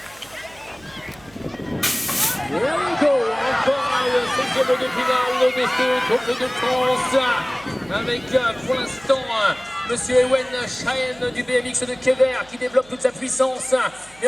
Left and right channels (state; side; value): noise; right; hum, 26 dB below the sound